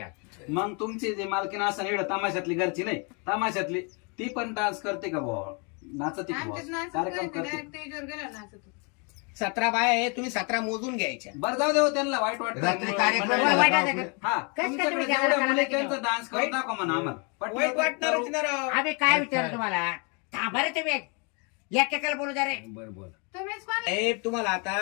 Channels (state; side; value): quieter; right; 34.1 dB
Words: मग तुमची जे मालकीन असं एवढं तमाशातली घरची नाही, तमाशातली ती पण डान्स करते का बुवा? नाचते का बुवा? आमच्यात नाचत कार्यक्रम नाही, करते. direct स्टेजवर गेला नाचत. 17 बाया आहे. तुम्ही 17 मोजून घ्यायच्या. बरं जाऊ देऊ त्यांना वाईट वाटतं. रात्री कार्यक्रम मंडळी- वाईट झाला वाटतं का? हा, कसं काय तुमच्याकडे तुम्ही जेवढ्या गावाला मुली करायला त्यांचा डान्स करून दाखवा म्हणा आम्हाला. पटलं वाईट तर वाटणारच करू. ना राव. आम्ही काय विचारलं तुम्हाला? थांबा रे तुम्ही. एकेकाला बोलू द्या रे. बरं बोल. तुम्हीच कोण? साहेब तुम्हाला